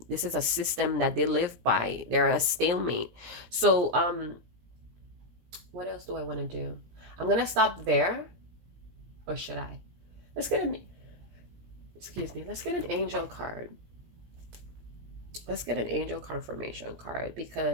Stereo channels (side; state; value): left; late; 17 ms